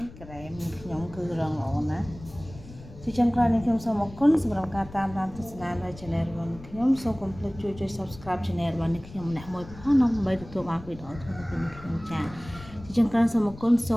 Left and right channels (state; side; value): noise; left; rumble, 17 dB below the sound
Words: ះក្រែមខ្ញុំគឺរឹងល្អណាស់ជាចុងក្រោយនេះខ្ញុំសូមអរគុណសម្រាប់ការតាមដានទស្សនានៅ Channel របស់ខ្ញុំសូមកុំភ្លេចជួយ Subscribe Channel របស់ខ្ញុំម្នាក់មួយផងដើម្បីទទួលបានវីដេអូថ្មីៗពីខ្ញុំចាជាចុងក្រោយសូមអរគុណសូ